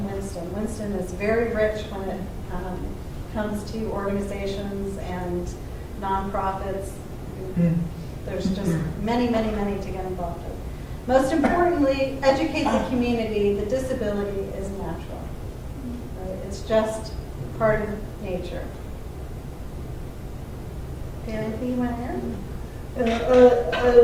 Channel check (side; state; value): both; identical; correlation 1.00